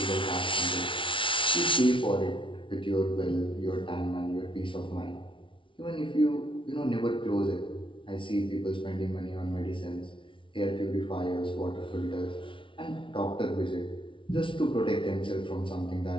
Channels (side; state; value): right; late; 0.25 ms